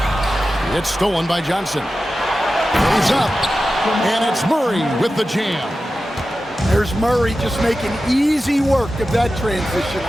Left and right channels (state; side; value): normal; both; correlation 0.93